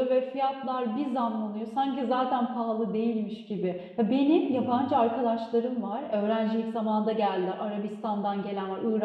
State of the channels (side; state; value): both; identical; correlation 1.00